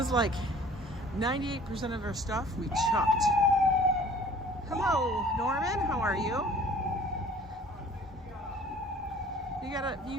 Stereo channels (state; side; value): normal; both; correlation 0.50